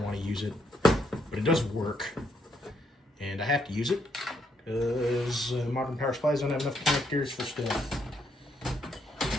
want to use it, but it does work. And I have to use it because modern power supplies don't have enough connectors for stuff.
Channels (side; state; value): both; normal; correlation 0.75